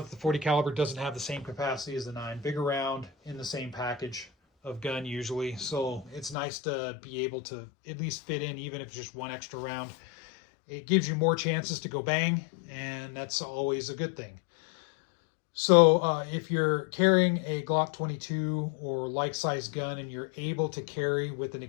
the 40 caliber doesn't have the same capacity as the 9 big around in the same package of gun usually, so it's nice to be able to at least fit in, even if it's just one extra round. It gives you more chances to go bang, and that's always a good thing. So if you're carrying a Glock 22 or like size gun and you're able to carry with an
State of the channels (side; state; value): right; drops out; at 6.4 s